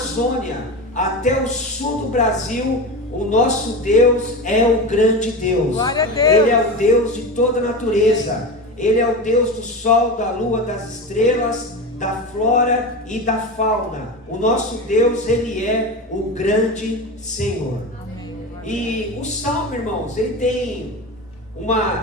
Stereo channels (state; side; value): normal; both; correlation 0.24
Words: até o sul do Brasil, o nosso Deus é o grande Deus. Glória a Deus. Ele é o Deus de toda a natureza. Ele é o Deus do sol, da lua, das estrelas, da flora e da fauna. O nosso Deus, Ele é o grande Senhor. E o Salmo, irmãos, ele tem